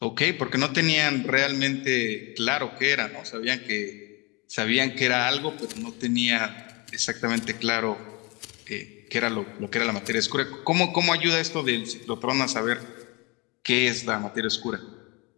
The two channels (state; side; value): quieter; right; 27.5 dB